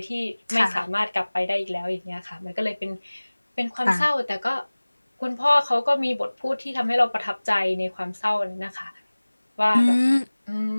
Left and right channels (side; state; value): both; inverted; correlation -1.00